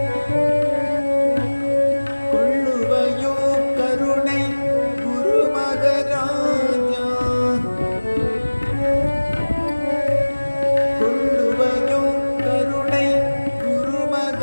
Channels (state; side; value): inverted; both; correlation -1.00